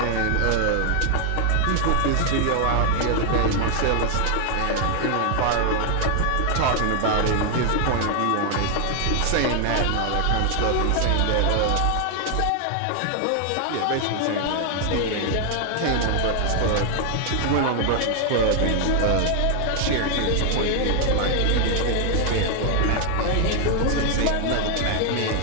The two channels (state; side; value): different; both; correlation 0.00